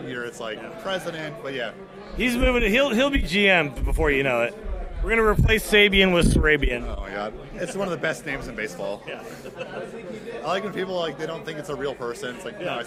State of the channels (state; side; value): identical; both; correlation 1.00